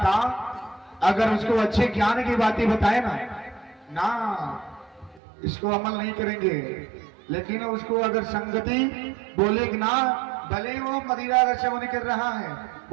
अगर उसको अच्छे ज्ञान की बातें बताए ना इसको अमल नहीं करेंगे। लेकिन उसको अगर संगति बोले कि ना, भले वो मदिरा का सेवन कर रहा है,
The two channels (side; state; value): left; drops out; at 5.2 s